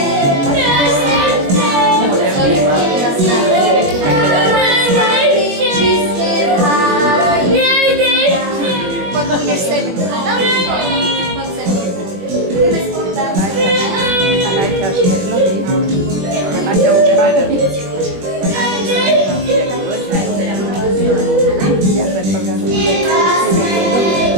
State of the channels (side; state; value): left; late; 20 ms